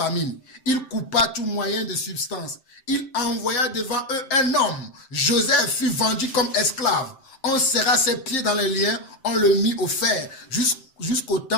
Il coupa tout moyen de substance. Il envoya devant eux un homme. Joseph fut vendu comme esclave. On serra ses pieds dans les liens, on le mit au fer, jusqu'au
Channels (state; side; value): late; right; 7.6 ms